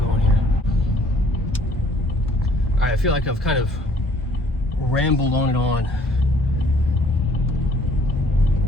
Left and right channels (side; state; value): both; normal; correlation 0.59